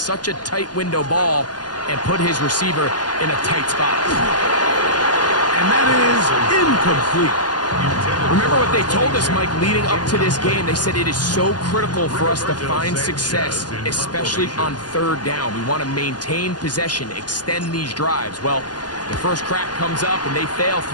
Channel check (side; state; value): right; late; 0.69 ms